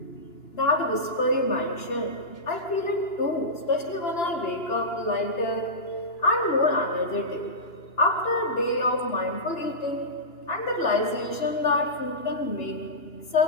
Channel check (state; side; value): late; right; 2.9 ms